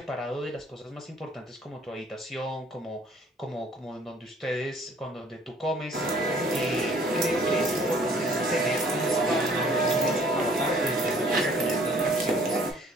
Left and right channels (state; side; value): normal; both; correlation 0.58